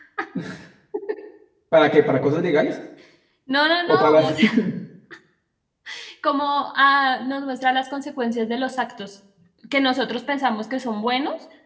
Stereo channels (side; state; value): both; identical; correlation 1.00